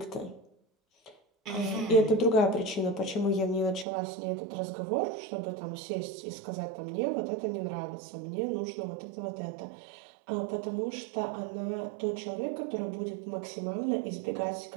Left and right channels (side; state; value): left; drops out; at 3.9 s